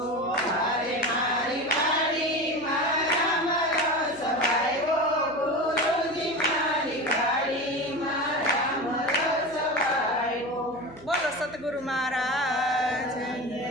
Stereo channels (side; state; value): right; noise; hum, 20 dB below the sound